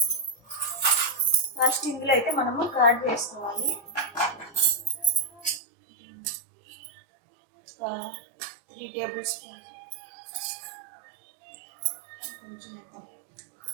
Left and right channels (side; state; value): left; drops out; at 5.6 s